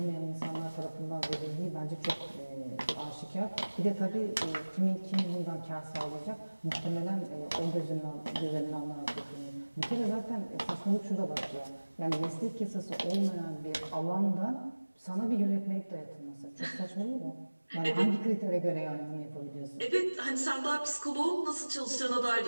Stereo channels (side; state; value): both; inverted; correlation -1.00